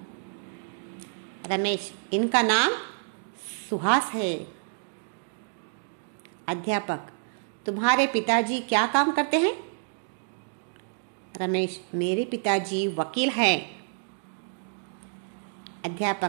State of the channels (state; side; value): silent; left; digital silence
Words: रमेश, इनका नाम सुहास है। अध्यापक, तुम्हारे पिताजी क्या काम करते हैं? रमेश, मेरे पिताजी वकील हैं।